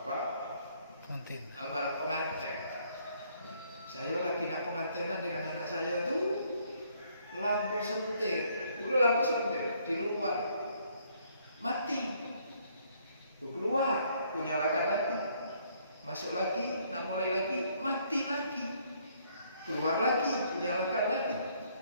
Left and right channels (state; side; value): inverted; both; correlation -0.67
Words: Malam pengantin. Saya lagi nak pengantinan dengan anak saya tuh lampu sentir, dulu lampu sentir di luar mati, keluar, kunyalakan lagi, masuk lagi, nak mulai lagi, mati lagi, keluar lagi, kunyalakan lagi,